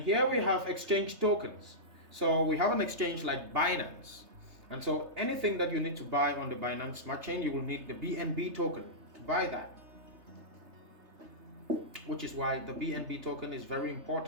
we have exchange tokens. So we have an exchange like Binance. And so anything that you need to buy on the Binance Smart Chain, you will need the BNB token to buy that. Which is why the BNB token is very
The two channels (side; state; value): left; late; 3.3 ms